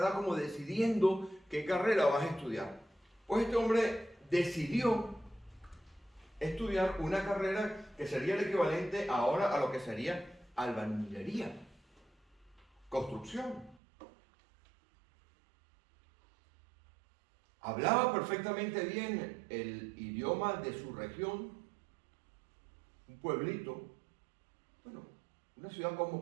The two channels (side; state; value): left; drops out; at 13.8 s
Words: como decidiendo qué carrera vas a estudiar. Pues este hombre decidió estudiar una carrera que sería el equivalente ahora a lo que sería albañilería, construcción. Hablaba perfectamente bien el idioma de su región, un pueblito, bueno, una ciudad